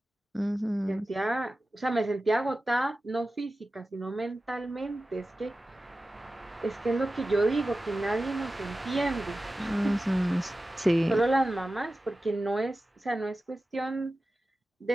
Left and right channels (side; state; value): both; normal; correlation 0.94